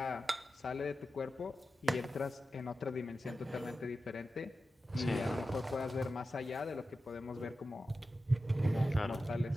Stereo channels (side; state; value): both; normal; correlation 0.92